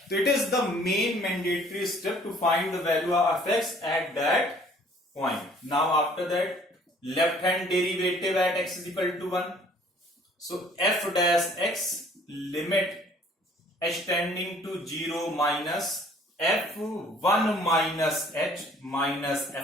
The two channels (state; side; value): normal; both; correlation 0.56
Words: So it is the main mandatory step to find the value of fx at that point. Now after that, left hand derivative at x is equal to 1. So f dash x limit h tending to 0 minus f1 minus h minus